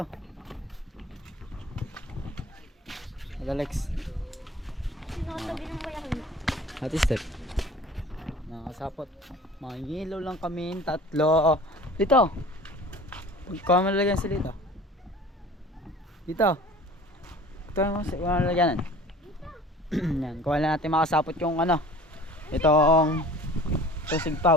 Hello Lex. Sinatabi ng bayan. Ate Step. Nakasapot. Mangilaw lang kami, tatlo. Dito. Kuha mo lalagyan sila dito. Dito. Ito mo sa lalagyanan. Yan, kuha lang natin makasapot yung ano. Itong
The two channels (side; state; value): both; normal; correlation 0.45